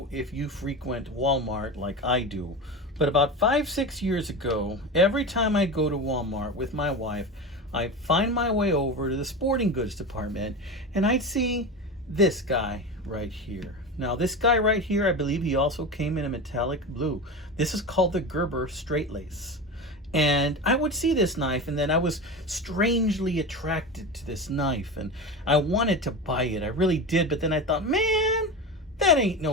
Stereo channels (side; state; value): both; normal; correlation 0.25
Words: if you frequent Walmart like I do, but about 5-6 years ago, every time I go to Walmart with my wife, I'd find my way over to the sporting goods department and I'd see this guy right here. Now this guy right here, I believe he also came in a metallic blue. This is called the Gerber Straightlace. And I would see this knife and then I was strangely attracted to this knife and I wanted to buy it. I really did, but then I thought, man, that ain't